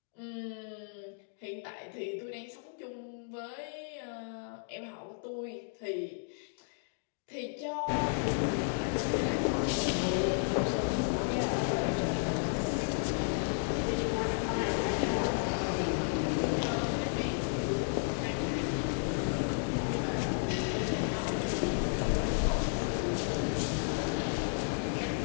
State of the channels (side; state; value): right; silent; digital silence